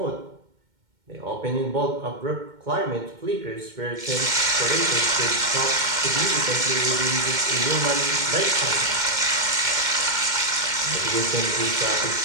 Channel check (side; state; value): left; late; 2.1 ms